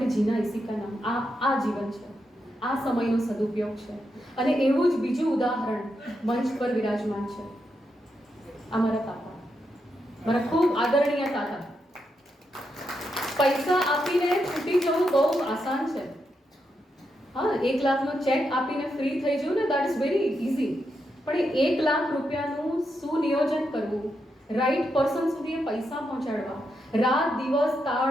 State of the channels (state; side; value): normal; both; correlation 0.84